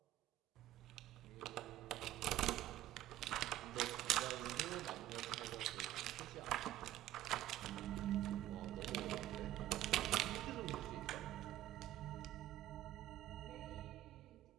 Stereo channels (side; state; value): left; quieter; 13.9 dB